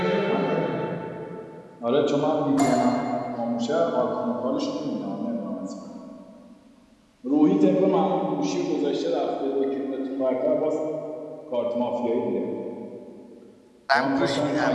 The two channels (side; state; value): both; identical; correlation 1.00